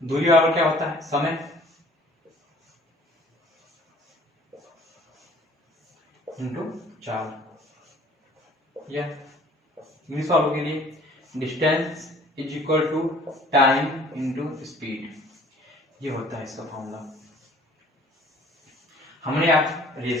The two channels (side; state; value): both; normal; correlation 0.53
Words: दूरी बराबर क्या होता है, समय इंटू 4, या इंग्लिश वालों के लिए distance is equal to time into speed, ये होता है इसका फॉर्मूला। हमने आप